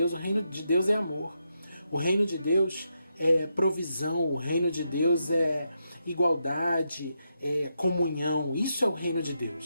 O reino de Deus é amor. O reino de Deus é provisão. O reino de Deus é igualdade, é comunhão. Isso é o reino de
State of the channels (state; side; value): inverted; both; correlation -0.83